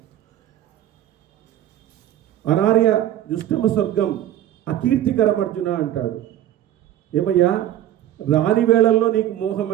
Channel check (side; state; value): left; quieter; 12.3 dB